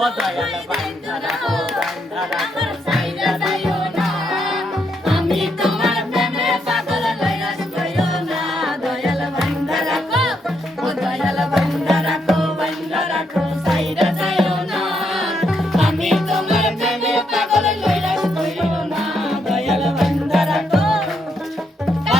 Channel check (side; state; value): both; normal; correlation 0.77